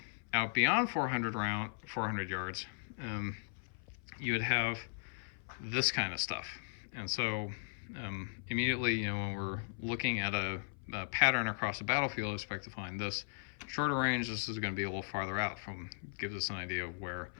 out beyond 400 yards, you would have this kind of stuff. And so immediately, when we're looking at a pattern across a battlefield, I expect to find this. Shorter range, this is going to be a little farther out, gives us an idea of where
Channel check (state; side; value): silent; right; 53 dB below the other